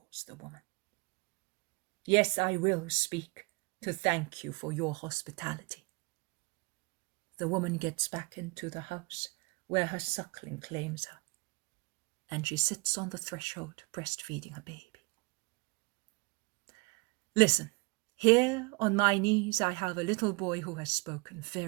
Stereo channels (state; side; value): quieter; left; 28.1 dB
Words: the woman. Yes, I will speak, to thank you for your hospitality. The woman gets back into the house where her suckling claims her, and she sits on the threshold breastfeeding her baby. Listen, here on my knees I have a little boy who has spoken